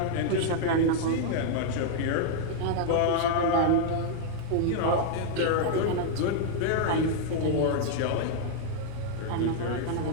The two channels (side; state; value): both; different; correlation -0.01